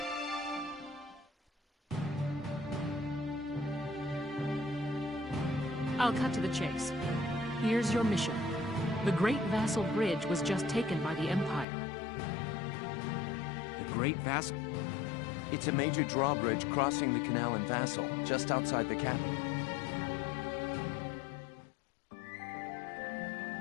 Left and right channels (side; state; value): right; drops out; at 11.7 s